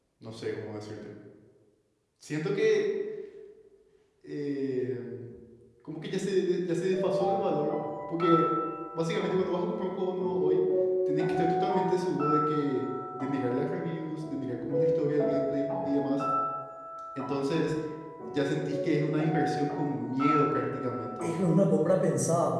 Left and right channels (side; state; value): both; identical; correlation 1.00